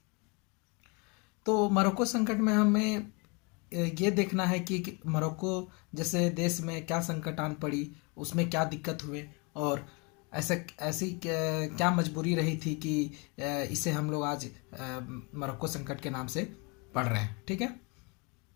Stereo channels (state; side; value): quieter; right; 30.8 dB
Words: तो मोरक्को संकट में हमें ये देखना है कि मोरक्को जैसे देश में क्या संकट आन पड़ी, उसमें क्या दिक्कत हुए और ऐसी क्या मजबूरी रही थी कि इसे हम लोग आज मोरक्को संकट के नाम से पढ़ रहे हैं। ठीक है,